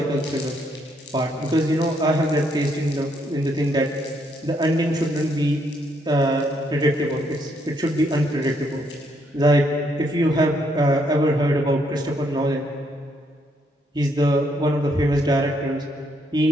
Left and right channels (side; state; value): both; normal; correlation 0.73